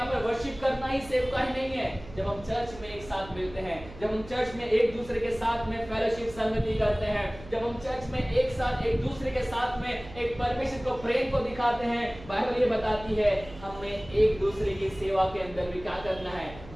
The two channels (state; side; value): noise; right; hum, 16 dB below the sound